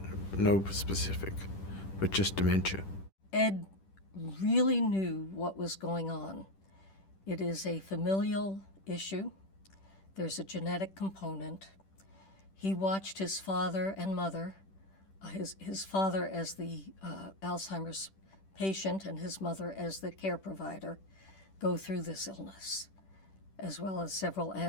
No specific, but just dementia. Ed really knew what was going on. It is a familial issue. There's a genetic component. He watched his father and mother, his father as the Alzheimer's patient and his mother as the care provider, go through this illness, as well as several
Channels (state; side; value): late; right; 10 ms